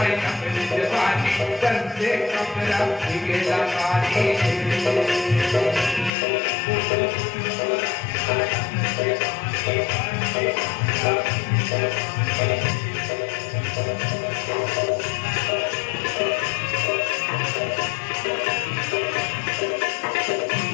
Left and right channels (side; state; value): right; drops out; at 6.1 s